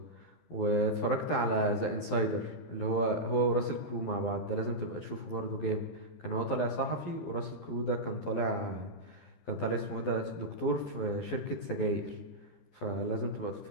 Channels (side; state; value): right; late; 12 ms